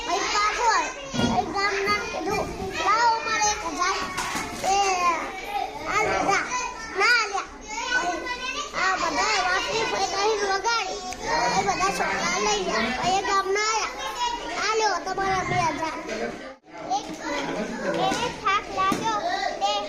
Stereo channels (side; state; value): both; identical; correlation 1.00